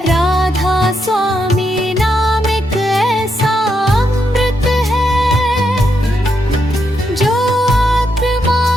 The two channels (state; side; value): normal; both; correlation 0.81